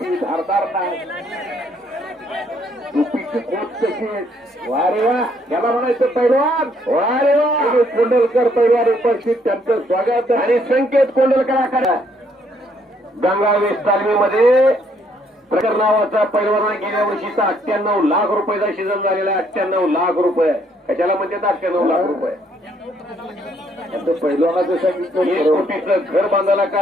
धारदार नाही. टोपीची कोट कशी. वा रे वा. याला म्हणायचं पैलवान. वा रे वा. कोंडलकर पैलवान उपस्थित त्यांचं स्वागत. आणि संकेत कोंडलकरांकडे गंगावेस तालमीमध्ये प्रकार नावाचा पैलवाना गेल्या वर्षीचा 98 लाख रुपयाचा सीझन झालेला आहे. 98 लाख रुपये. कशाला म्हणतात 98 लाख रुपये. पैलवानाचं सांगितलं 1 कोटीचं घर बांधायला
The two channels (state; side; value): normal; both; correlation 0.68